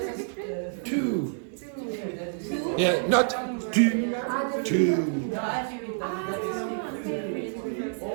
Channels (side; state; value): left; silent; digital silence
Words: Two. Yeah, not two. Two.